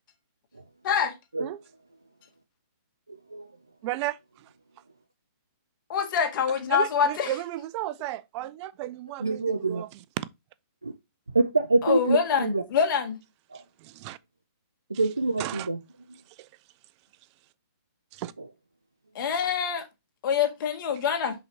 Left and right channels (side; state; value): both; inverted; correlation -0.42